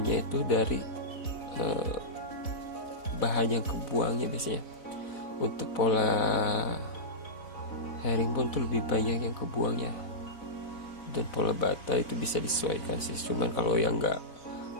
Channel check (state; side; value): late; right; 4.1 ms